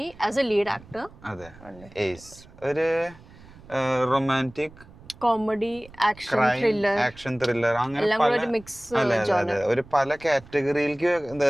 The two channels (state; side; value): noise; right; rumble, 22 dB below the sound